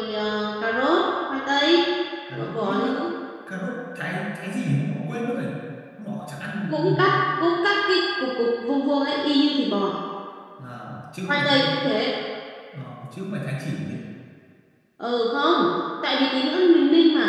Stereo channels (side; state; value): both; identical; correlation 1.00